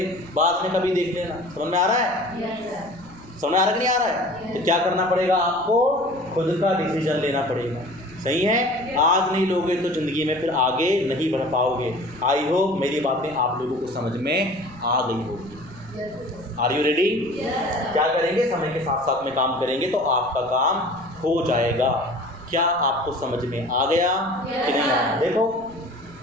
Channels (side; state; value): right; noise; rumble, 23 dB below the sound